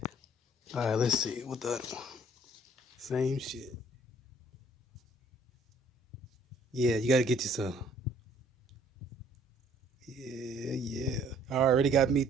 All right, let's see. What the other one? Same shit. Yeah, you gotta get you some. Yeah. I already got me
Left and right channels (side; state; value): both; normal; correlation 0.58